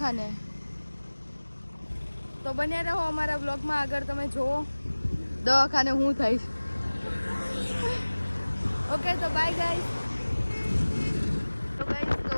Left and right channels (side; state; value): both; inverted; correlation -1.00